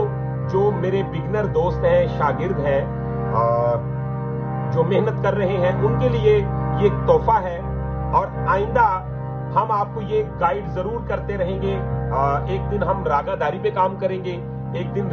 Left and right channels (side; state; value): both; identical; correlation 1.00